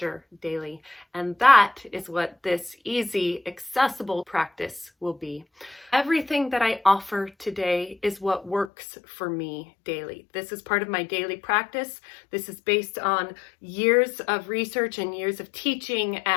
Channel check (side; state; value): right; drops out; at 8.7 s